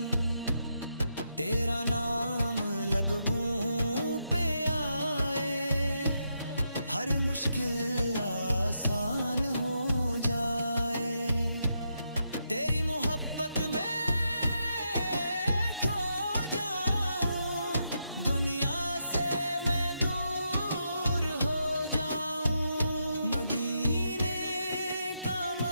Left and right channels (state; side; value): inverted; both; correlation -0.82